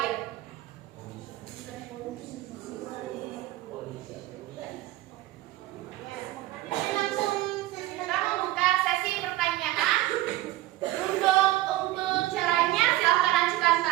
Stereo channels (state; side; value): quieter; left; 16.6 dB